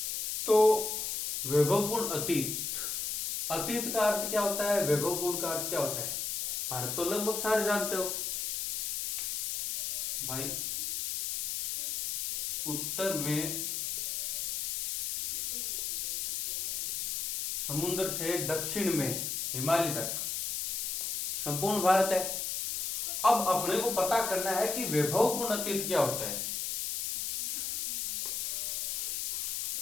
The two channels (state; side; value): noise; left; hiss, 1 dB below the sound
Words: तो वैभवपूर्ण अतीत, अतीत का अर्थ क्या होता है, वैभवपूर्ण का अर्थ क्या होता है, भारत तो लगभग सारे जानते हो भाई। उत्तर में समुद्र से दक्षिण में हिमालय तक संपूर्ण भारत है। अब अपने को पता करना है कि वैभवपूर्ण अतीत क्या होता है।